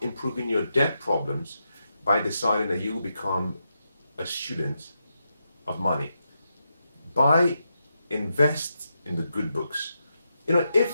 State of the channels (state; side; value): inverted; both; correlation -0.85